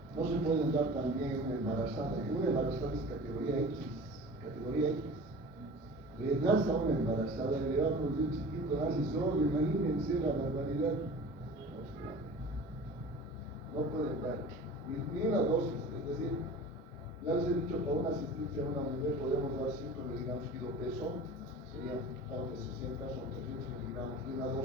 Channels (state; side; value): normal; both; correlation 0.39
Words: no se pueden dar también en una embarazada. En una embarazada es categoría X. Categoría X. Le das a una embarazada y le va a producir chiquito, nace solo, imagínense la barbaridad. No pueden dar ni una dosis, es decir, ya les he dicho, para una asistencia a una mujer podemos dar 5 miligramos kilo peso, serían de 60, son 300 miligramos de una